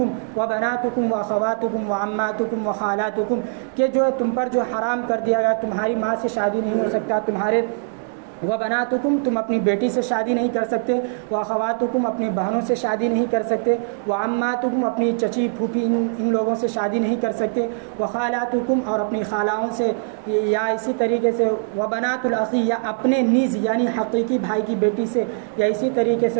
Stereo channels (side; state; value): left; silent; digital silence